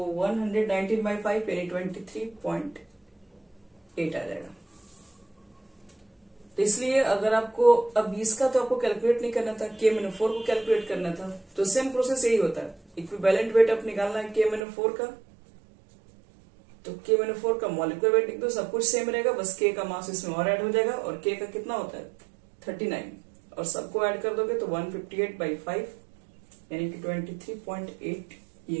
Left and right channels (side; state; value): left; drops out; at 14.7 s